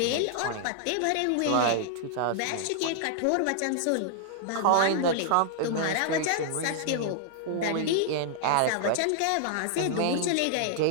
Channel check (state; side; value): different; both; correlation -0.01